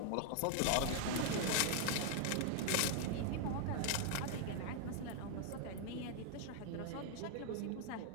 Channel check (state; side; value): different; both; correlation 0.00